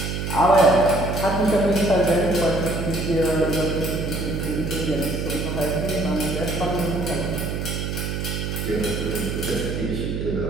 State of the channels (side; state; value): right; noise; hum, 3 dB below the sound